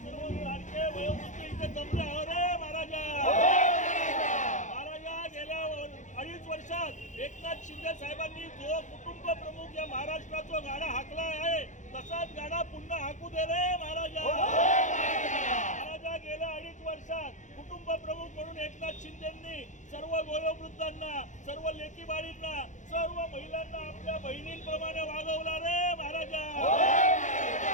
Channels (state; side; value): late; right; 0.36 ms